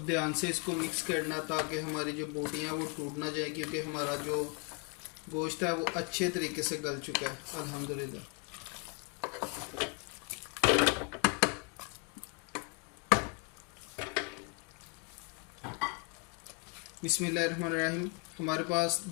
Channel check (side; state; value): right; quieter; 32.6 dB